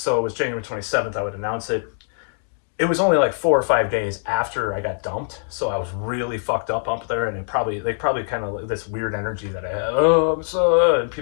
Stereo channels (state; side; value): silent; right; 61 dB below the other